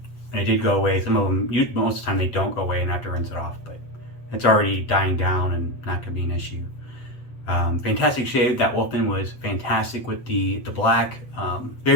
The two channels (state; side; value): late; right; 8.0 ms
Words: and it did go away. Some of them, most of the time, they don't go away and I have to rinse it off. But it's already dying down and not gonna be an issue. Fantastic shave. That Wolfman was fantastic with the black.